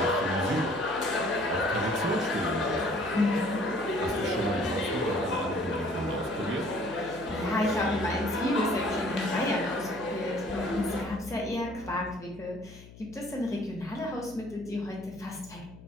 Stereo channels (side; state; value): left; noise; hum, 19 dB below the sound